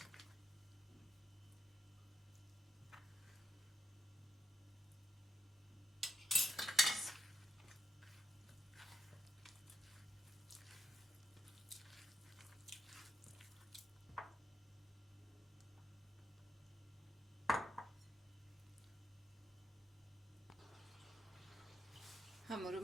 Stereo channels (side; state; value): both; normal; correlation 0.84